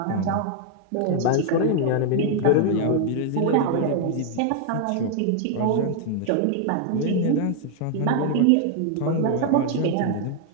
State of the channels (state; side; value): different; both; correlation 0.00